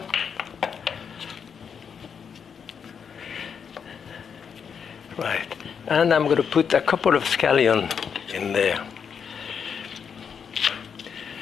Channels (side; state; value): right; quieter; 6.9 dB